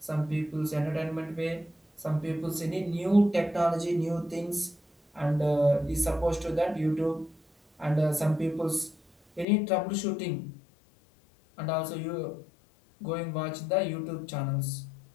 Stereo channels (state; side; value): drops out; right; at 9.5 s